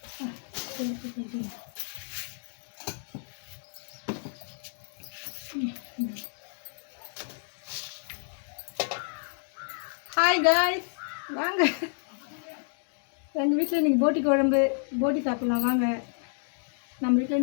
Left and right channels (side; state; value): right; silent; digital silence